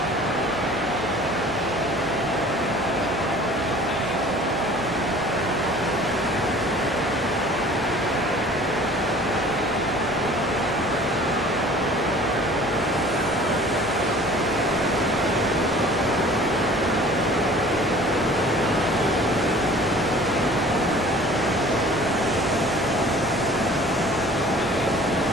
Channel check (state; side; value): normal; both; correlation 0.47